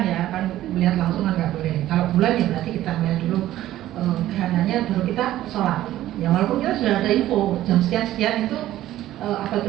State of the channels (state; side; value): quieter; left; 14.0 dB